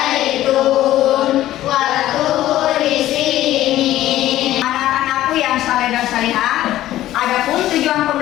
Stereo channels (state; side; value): quieter; right; 14.1 dB